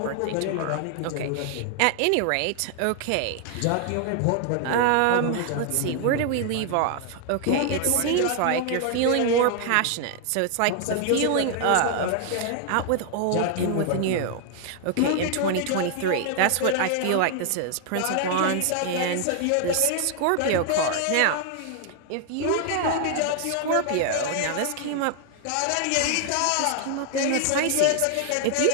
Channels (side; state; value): both; different; correlation 0.00